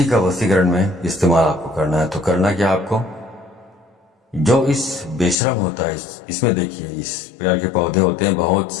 का वशीकरण में इस्तेमाल आपको करना है। तो करना क्या आपको, जो इस बेशरम होता है इसमें देखिए इस प्रकार के पौधे होते हैं बहुत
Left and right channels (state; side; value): drops out; right; at 5.4 s